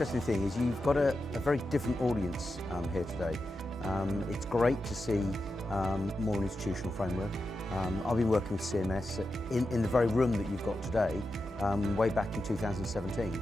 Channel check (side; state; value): both; normal; correlation 0.89